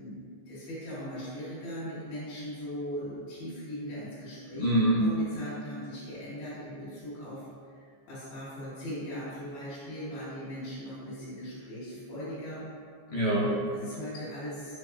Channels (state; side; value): late; right; 14 ms